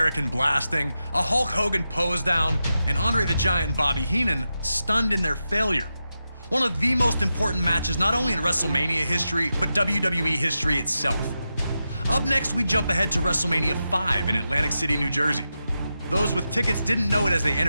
blasting, a Hulk Hogan pose down, and Andre the Giant and Bobby Heenan stunned in their failure. One of the most important matches not only in WrestleMania history, but WWE history itself. Up next, we jump ahead to WrestleMania 5 in Atlantic City, New Jersey. Those with tickets didn't know it as they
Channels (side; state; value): both; inverted; correlation -0.89